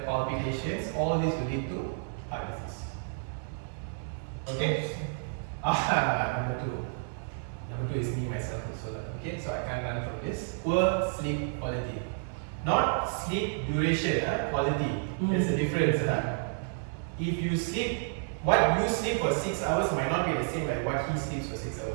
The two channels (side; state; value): left; silent; 55 dB below the other